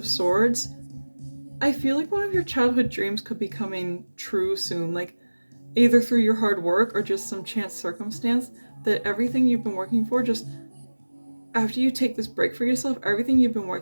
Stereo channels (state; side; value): inverted; both; correlation -1.00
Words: Swords, I feel like one of your childhood dreams could be coming true soon, like either through your hard work or just some chance circumstance, that everything you've been working for, just after you take this break for yourself, everything you've been